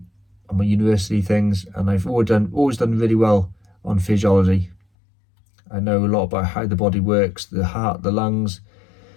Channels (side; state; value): right; drops out; at 4.8 s